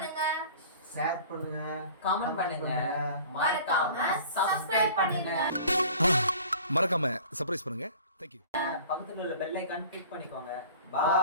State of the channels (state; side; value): inverted; both; correlation -0.46